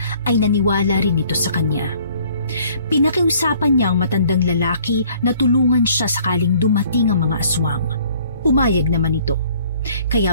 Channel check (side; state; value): both; inverted; correlation -0.58